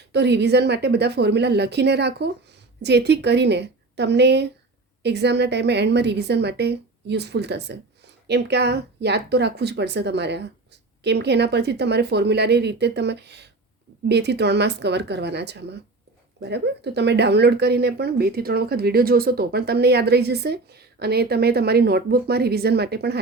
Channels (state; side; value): quieter; left; 3.3 dB